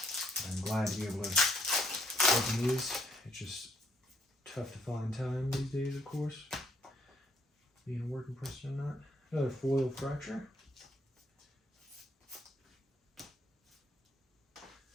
I'm glad to be able to open these. It's just tough to find time these days, of course. Being a working person or not. Another foil fracture.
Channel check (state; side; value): normal; both; correlation 0.70